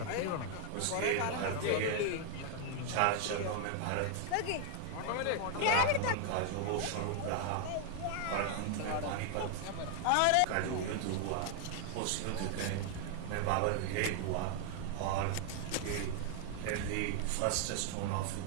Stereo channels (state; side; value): different; both; correlation 0.00